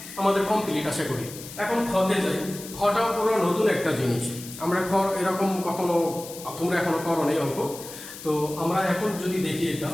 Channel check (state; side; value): noise; left; hiss, 13 dB below the sound